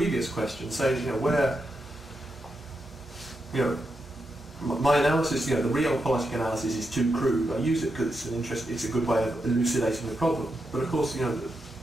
question. So, my analysis, the realpolitik analysis is too crude. I use it because it's a good way of elucidating the problem. But of course,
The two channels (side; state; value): both; normal; correlation 0.85